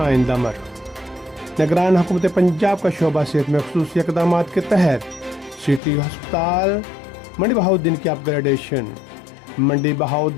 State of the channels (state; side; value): drops out; right; at 5.8 s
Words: अमर। निगरान हुकूमत पंजाब का शोबा सेहत में ख़ुसूसी इक़दाम के तहत सिटी अस्पताल मंडी बहाउद्दीन की अपग्रेडेशन। मंडी